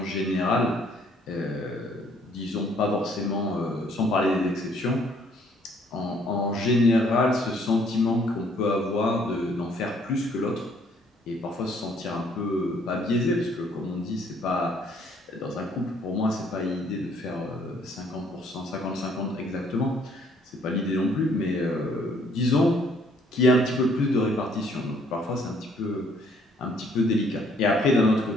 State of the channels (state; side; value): normal; both; correlation 0.63